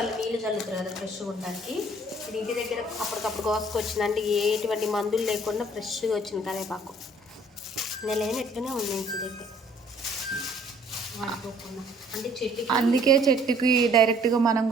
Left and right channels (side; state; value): both; normal; correlation 0.58